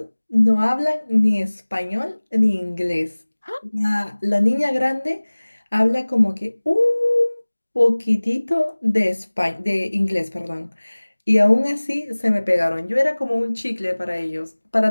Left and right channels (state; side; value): inverted; both; correlation -1.00